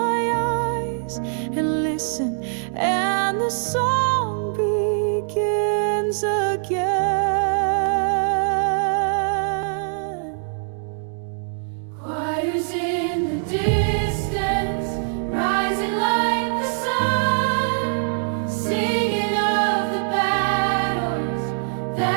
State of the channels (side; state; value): left; silent; digital silence